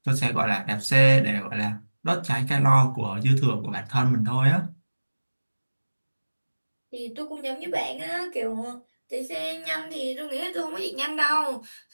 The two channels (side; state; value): both; inverted; correlation -1.00